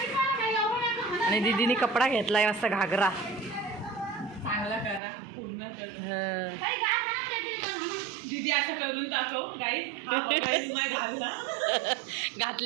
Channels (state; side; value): drops out; left; at 5.0 s